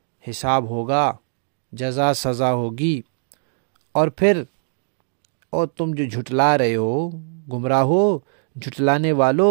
حساب ہوگا، جزا سزا ہوگی۔ اور پھر اور تم جو جھٹلا رہے ہو، گمراہ ہو، جھٹلانے والو،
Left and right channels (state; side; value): silent; left; digital silence